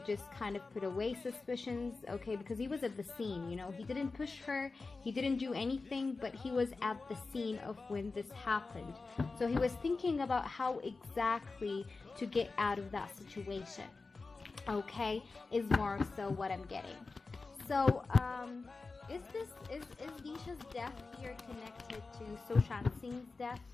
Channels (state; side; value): quieter; right; 3.9 dB